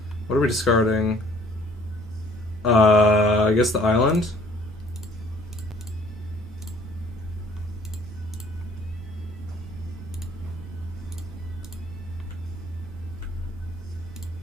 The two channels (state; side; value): normal; both; correlation 0.57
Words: we discarding? I guess the island.